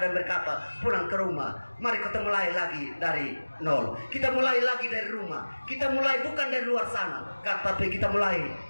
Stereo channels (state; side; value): inverted; both; correlation -1.00